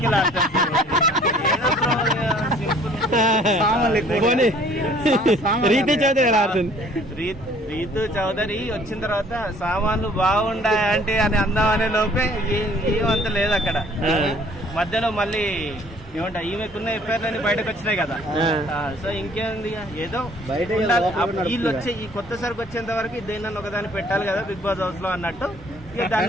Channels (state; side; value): normal; both; correlation 0.56